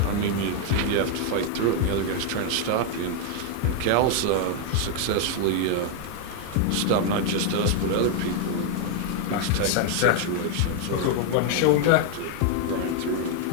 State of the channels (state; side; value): different; both; correlation 0.00